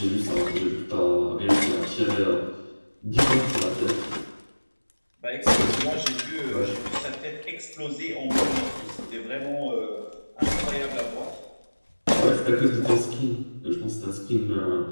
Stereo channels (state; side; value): inverted; both; correlation -1.00